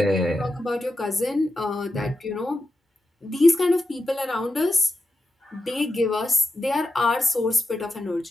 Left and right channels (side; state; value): both; normal; correlation 0.89